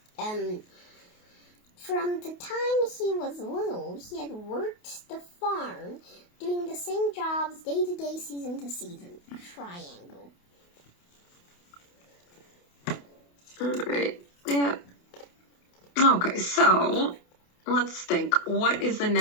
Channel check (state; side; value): late; right; 28 ms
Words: From the time he was little, he had worked the farm, doing the same jobs day to day, season to season. Triangle. All right. Yeah. Okay, so let's think. What is the